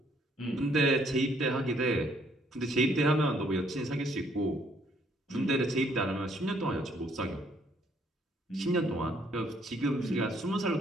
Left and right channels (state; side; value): normal; both; correlation 0.67